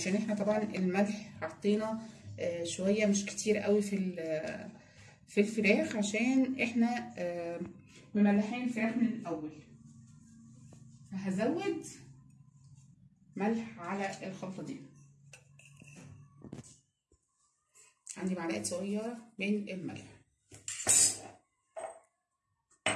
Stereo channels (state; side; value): identical; both; correlation 1.00